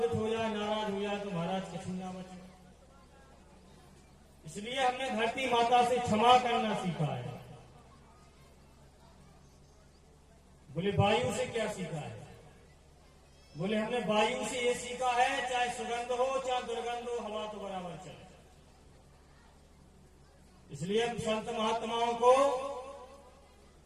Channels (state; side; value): identical; both; correlation 1.00